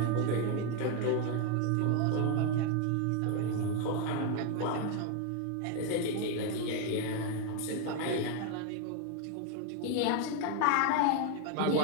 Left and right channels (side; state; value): both; different; correlation 0.01